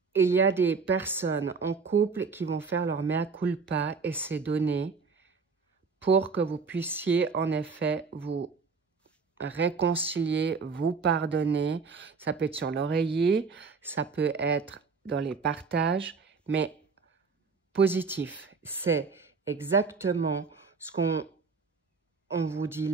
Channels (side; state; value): left; quieter; 4.9 dB